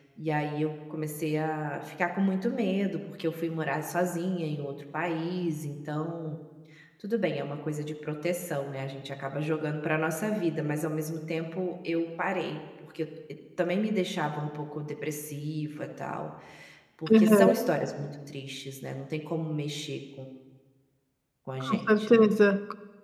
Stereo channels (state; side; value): identical; both; correlation 1.00